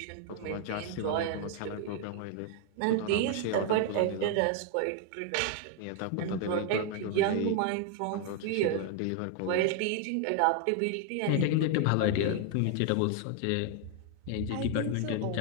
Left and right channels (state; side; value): different; both; correlation 0.00